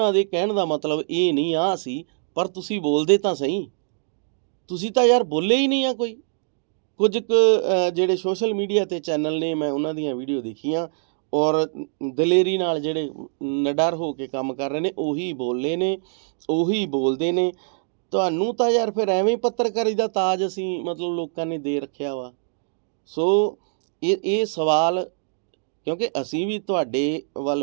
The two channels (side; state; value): left; silent; digital silence